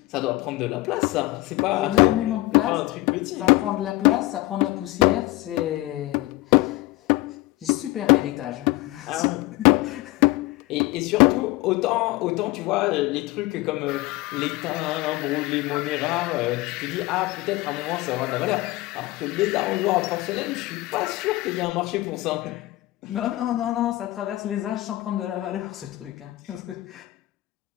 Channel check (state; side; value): quieter; right; 19.3 dB